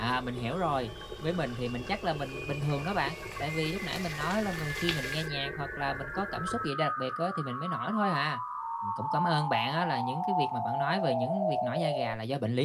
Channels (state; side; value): identical; both; correlation 1.00